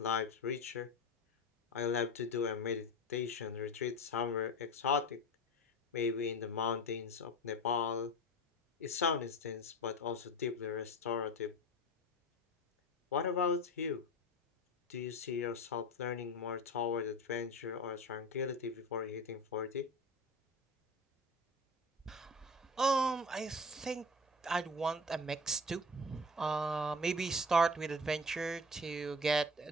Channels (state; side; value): normal; both; correlation 0.31